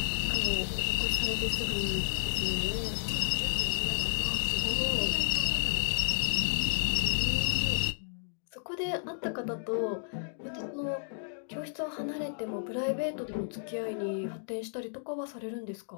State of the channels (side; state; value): right; silent; digital silence